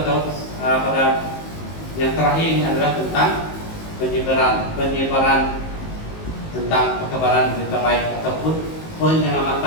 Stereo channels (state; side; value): late; right; 19 ms